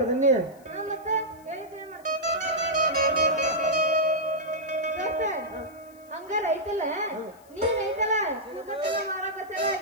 ನಿನ್ನೆ. ಮತ್ತೆ ಹೇಳಿದ್ದೇನೆ ಹಂಗಾರ ಐತಲ್ಲ, ನೀನ್ ಐತಲ್ಲ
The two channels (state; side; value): noise; left; hiss, 28 dB below the sound